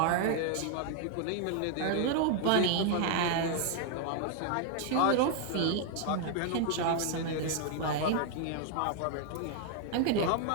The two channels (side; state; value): both; different; correlation 0.00